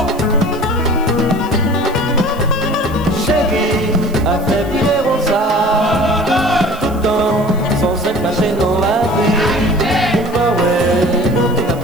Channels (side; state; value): right; noise; hiss, 23 dB below the sound